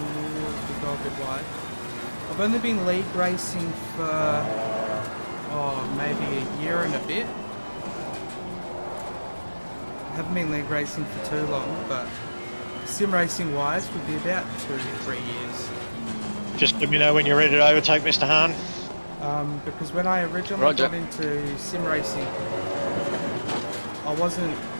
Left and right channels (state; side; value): inverted; both; correlation -1.00